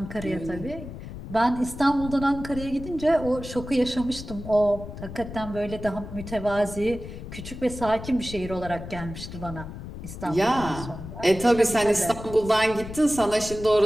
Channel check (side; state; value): left; noise; rumble, 11 dB below the sound